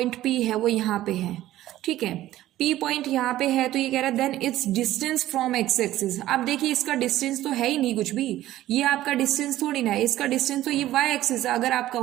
P है वो यहाँ पे है, ठीक है, P पॉइंट यहाँ पे है, तो ये कह रहा है then its distance from x axis. अब देखिए इसका डिस्टेंस तो है ही नहीं कुछ भी, ये आपका डिस्टेंस थोड़ी ना है, इसका डिस्टेंस तो ये y एक्सिस है। अगर आप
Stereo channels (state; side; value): quieter; left; 14.5 dB